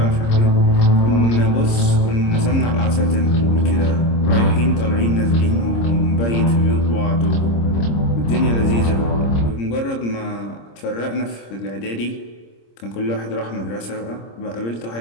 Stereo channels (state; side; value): late; right; 26 ms